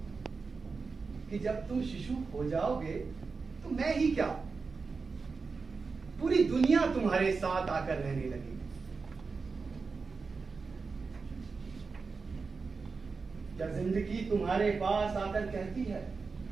कि जब तुम शिशु हो जाओगे तो मैं ही क्या, पूरी दुनिया तुम्हारे साथ आकर रहने लगेगी। क्या जिंदगी तुम्हारे पास आकर कहती है,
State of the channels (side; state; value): left; quieter; 4.6 dB